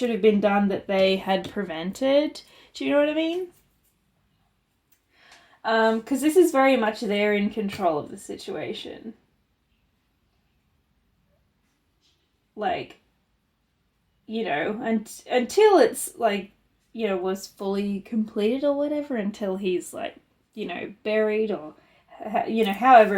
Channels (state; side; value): identical; both; correlation 1.00